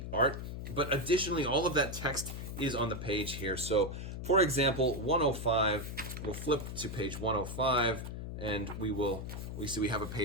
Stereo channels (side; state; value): left; noise; hum, 7 dB below the sound